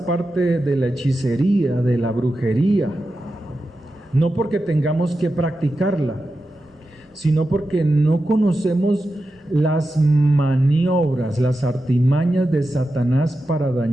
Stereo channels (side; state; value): both; normal; correlation 0.91